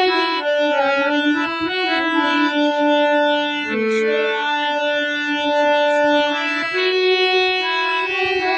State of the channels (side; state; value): both; identical; correlation 1.00